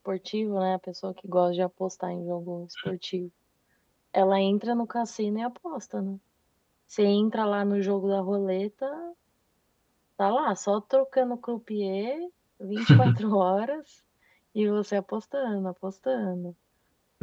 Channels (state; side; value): identical; both; correlation 1.00